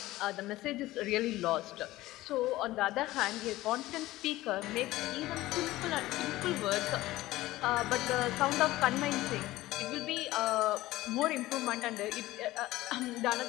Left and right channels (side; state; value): right; quieter; 17.2 dB